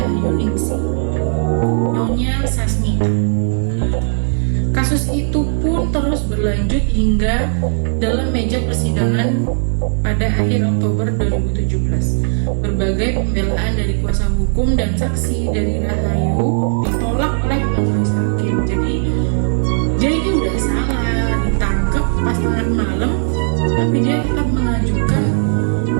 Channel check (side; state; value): left; silent; digital silence